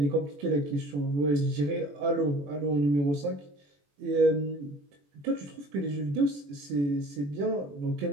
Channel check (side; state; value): left; late; 21 ms